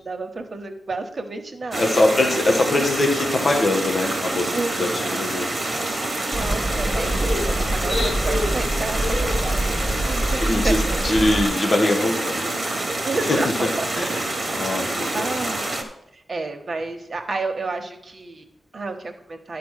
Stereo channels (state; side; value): normal; both; correlation 0.89